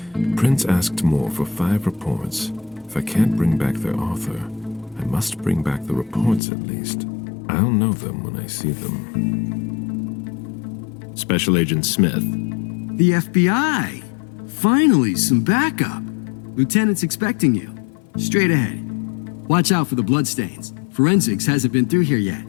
Prince asked more for 5 reports. If I can't bring back their author, I must bring back the reports at least. I'll know them when I see them. Special Agent Smith. The FBI! Finally, some backup. Lieutenant's expecting you. Straight ahead. Watch out for the bloodstains. Forensics hasn't been through here yet.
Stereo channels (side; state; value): right; drops out; at 6.4 s